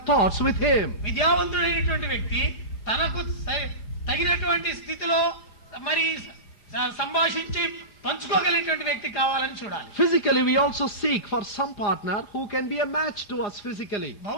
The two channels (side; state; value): right; late; 4.9 ms